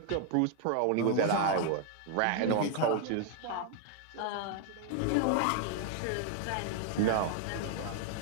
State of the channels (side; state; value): both; different; correlation 0.00